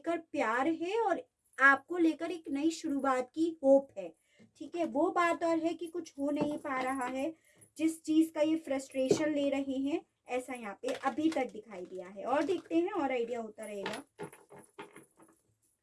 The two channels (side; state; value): both; identical; correlation 1.00